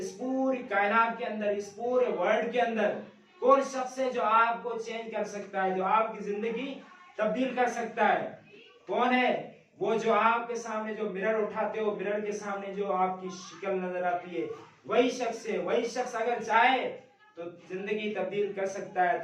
पूरी कायनात के अंदर, इस पूरे वर्ल्ड के अंदर कौन शख्स है जो आपको चेंज कर सकता है, जो आपकी जिंदगी तब्दील कर सकता है? कौन है वो? जो आपके सामने जो मिरर उठाते हो, मिरर के सामने जो आपकी शक्ल नजर आती है, वही शख्स है। वही शख्स अगर चाहे तो जिंदगी तब्दील कर सकता है।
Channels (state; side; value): identical; both; correlation 1.00